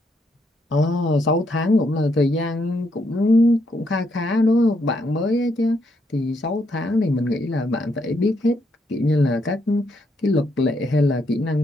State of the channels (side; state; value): both; normal; correlation 0.76